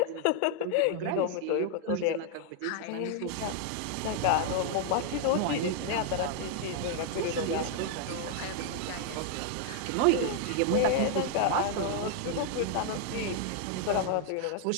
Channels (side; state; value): both; different; correlation -0.01